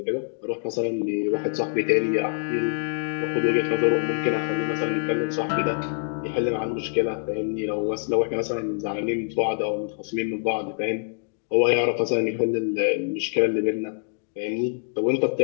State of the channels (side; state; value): right; silent; digital silence